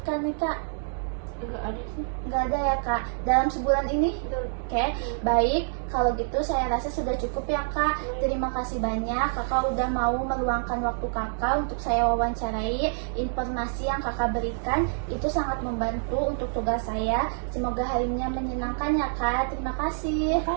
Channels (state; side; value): silent; left; digital silence